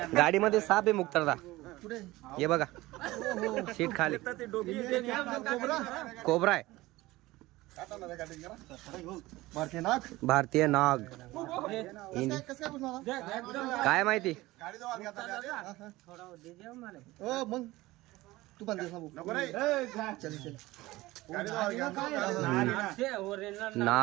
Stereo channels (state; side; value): quieter; left; 18.9 dB